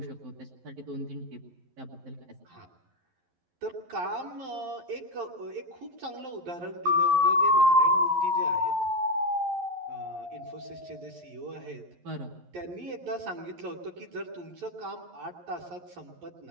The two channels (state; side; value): late; left; 11 ms